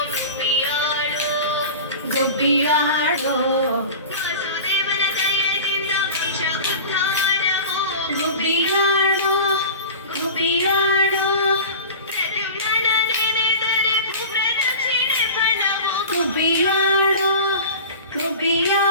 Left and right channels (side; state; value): both; inverted; correlation -0.35